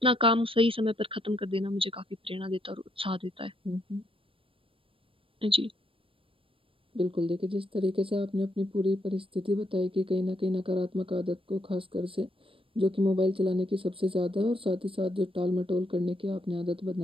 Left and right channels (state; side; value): late; left; 0.26 ms